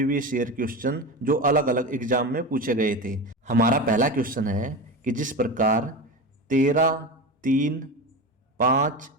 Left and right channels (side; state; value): both; normal; correlation 0.23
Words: ईयर क्वेश्चन जो अलग अलग एग्जाम में पूछे गए थे। हमारा पहला क्वेश्चन है कि जिस प्रकार 13, 3, 5,